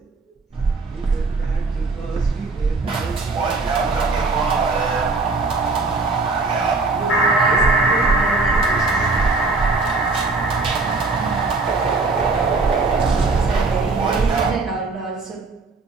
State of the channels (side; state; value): left; quieter; 3.6 dB